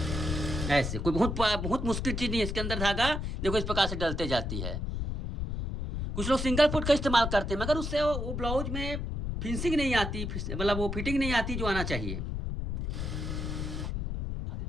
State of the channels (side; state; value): left; noise; rumble, 3 dB below the sound